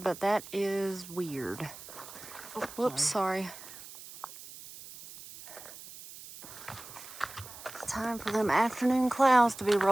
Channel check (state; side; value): noise; right; hiss, 15 dB below the sound